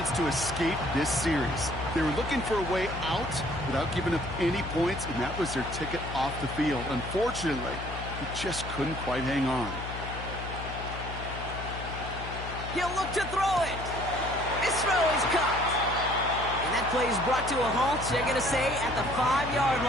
to escape this series. They were looking for a way out without giving up any points, and that was their ticket off the field. Unfortunately, he just couldn't quite hang on. He'll look to throw it. His throw is caught. And that play is brought to a halt, they're going to say, at the 5-yard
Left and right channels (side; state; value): left; noise; hum, 9 dB below the sound